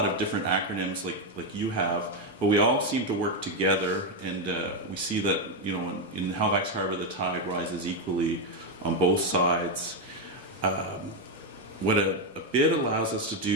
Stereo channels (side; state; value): both; normal; correlation 0.06